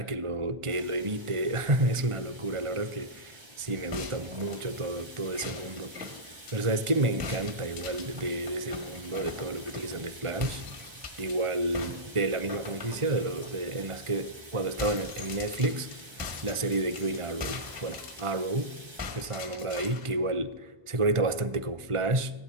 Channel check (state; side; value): late; left; 1.4 ms